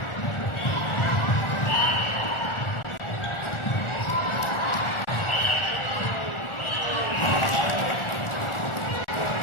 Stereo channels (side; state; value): right; late; 1.4 ms